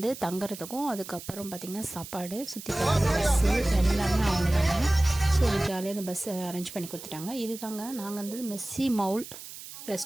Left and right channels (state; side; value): noise; right; hiss, 13 dB below the sound